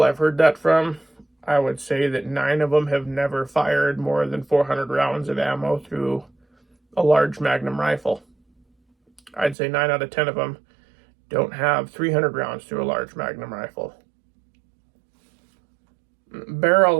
I've heard that from, I would say that 9 of them have never fired more than 400 rounds of ammo through a large Magnum rifle. I'd say 9 out of 10 of them don't have 300 rounds through a large Magnum rifle. Barrel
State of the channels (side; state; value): left; drops out; at 9.6 s